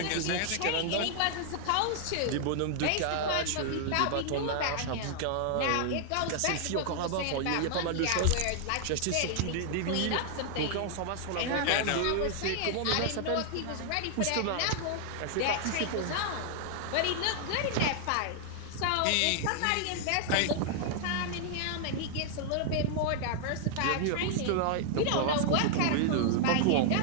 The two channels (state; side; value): different; both; correlation 0.00